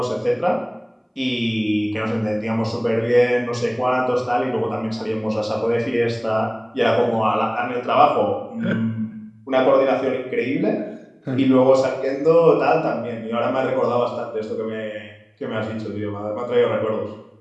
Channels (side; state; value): both; identical; correlation 1.00